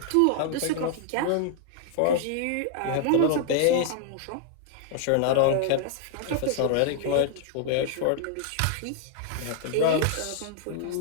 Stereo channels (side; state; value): both; different; correlation 0.00